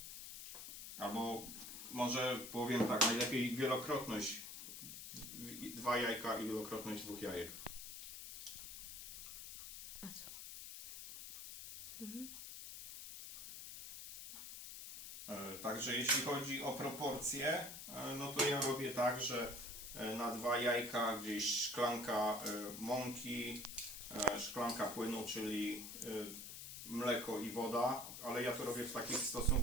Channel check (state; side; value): noise; left; hiss, 9 dB below the sound